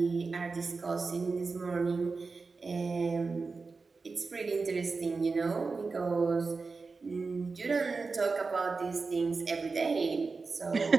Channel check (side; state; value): left; quieter; 4.3 dB